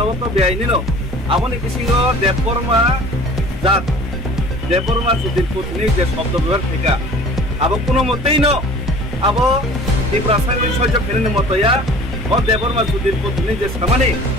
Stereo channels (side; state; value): both; normal; correlation 0.46